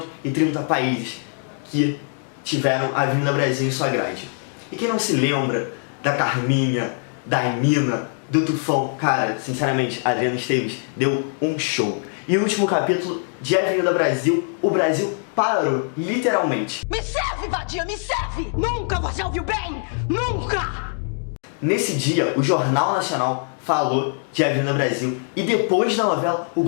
países que tiveram a Avenida Brasil em sua grade. E quem não se lembra da Carminha, da Emina, do Tufão? Cara, sinceramente, a Adriana Esteves deu um show. E o último capítulo de Avenida Brasil, o Brasil parou, literalmente. Me serve, vadia, me serve! Nunca você ouviu bem! Nunca! Nesse dia, o Jornal Nacional falou de Avenida Brasil. E depois da novela, o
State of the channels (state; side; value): silent; right; 56 dB below the other